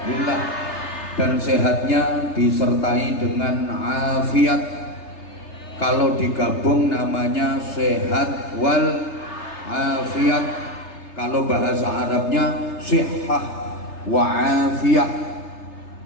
dan sehatnya disertai dengan afiat. Kalau digabung namanya sehat wal afiat. Kalau bahasa Arabnya sihah wa afiyah.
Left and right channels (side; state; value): right; late; 3.3 ms